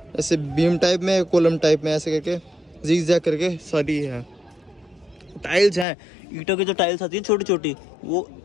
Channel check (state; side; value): drops out; right; at 5.9 s